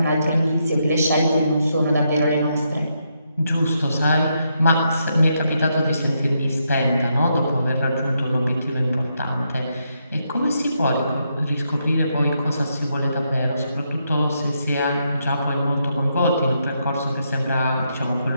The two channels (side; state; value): both; inverted; correlation -0.80